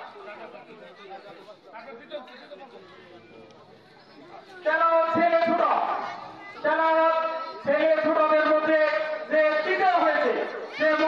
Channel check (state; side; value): identical; both; correlation 1.00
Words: তেলাওয়াত ছেলে ছোট, তেলাওয়াত ছেলে ছোটদের মধ্যে যে তৃতীয় হয়েছে সে